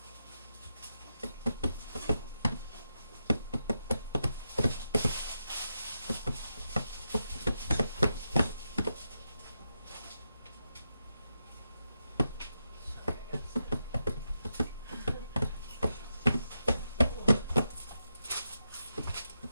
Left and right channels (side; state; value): both; inverted; correlation -0.86